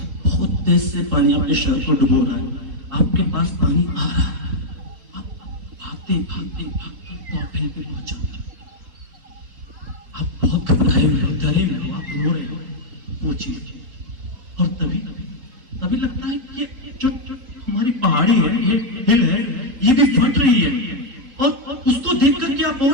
बहुत तेज से पानी आपके शहर को डुबो रहा है। आपके पास पानी आ रहा है, आप भागते भागते भागते टॉपिंग पे पहुंच जाते हो। आप बहुत घबराए हुए हो, डरे हुए हो, आप रो रहे हो, वो चीज। और तभी लगता है कि ये जो हमारी पहाड़ी है, ये हिल है, ये भी फट रही है, और उसको देख करके आप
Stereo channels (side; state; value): left; late; 4.0 ms